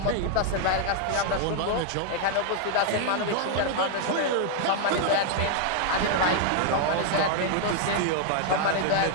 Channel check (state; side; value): different; both; correlation 0.00